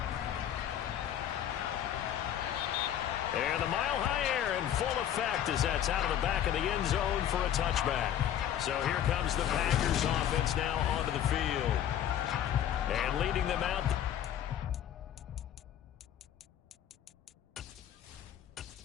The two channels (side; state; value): right; quieter; 10.5 dB